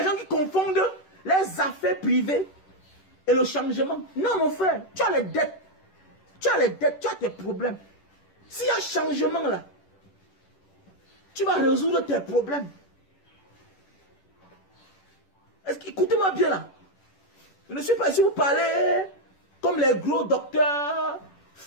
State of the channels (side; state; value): right; late; 10 ms